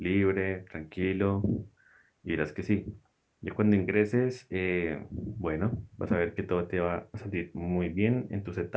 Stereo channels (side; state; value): both; identical; correlation 1.00